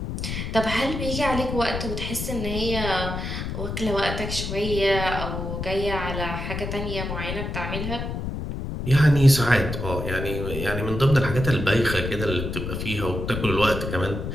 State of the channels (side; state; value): left; noise; rumble, 5 dB below the sound